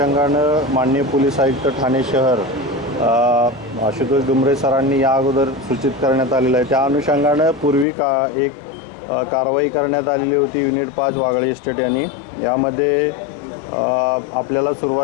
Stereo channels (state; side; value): drops out; right; at 7.9 s